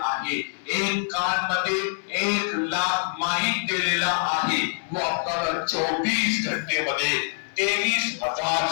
आहे, एक कान मध्ये 1 लाख माईक दिलेला आहे, वो आपल्याला 24 घंटे मध्ये 23,000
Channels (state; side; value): silent; right; digital silence